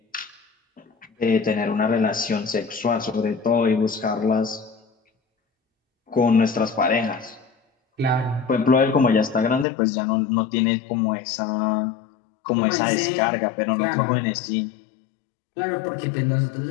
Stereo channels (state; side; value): drops out; right; at 9.7 s